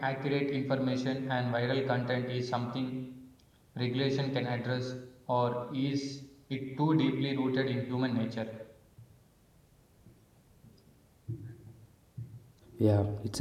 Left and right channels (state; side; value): identical; both; correlation 1.00